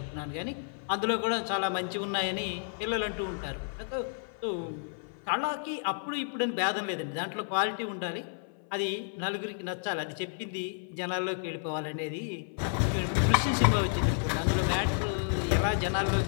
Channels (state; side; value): silent; right; 57 dB below the other